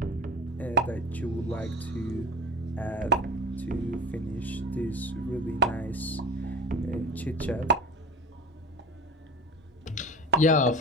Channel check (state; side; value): normal; both; correlation 0.32